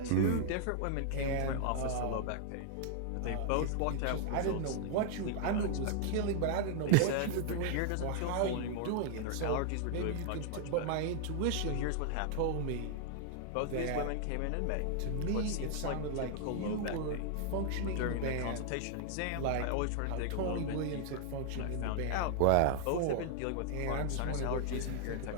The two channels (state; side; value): different; both; correlation -0.01